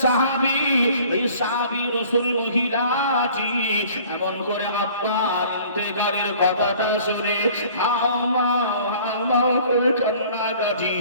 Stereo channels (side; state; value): both; inverted; correlation -0.51